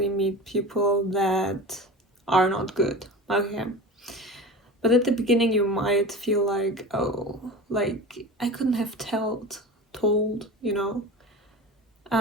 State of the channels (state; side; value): normal; both; correlation 0.32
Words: meet people that are not good. Okay. But at the beginning you might feel like, oh, I couldn't have told,